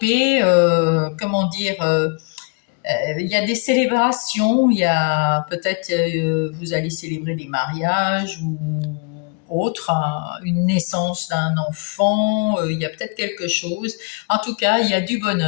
comment dire, il y a des célébrations, il y a peut-être, vous allez célébrer des mariages ou autre, hein, une naissance d'un enfant, il y a peut-être quelque chose. En tout cas, il y a du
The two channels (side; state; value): right; quieter; 34.1 dB